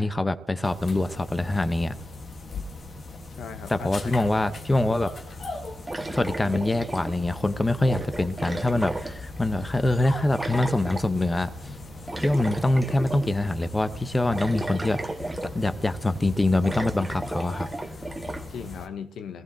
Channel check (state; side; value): normal; both; correlation 0.94